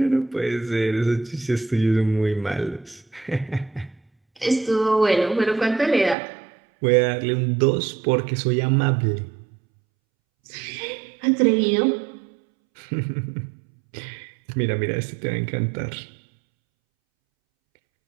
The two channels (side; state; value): left; drops out; at 6.2 s